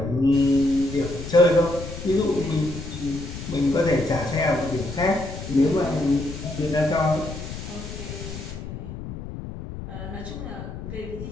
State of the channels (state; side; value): noise; left; rumble, 9 dB below the sound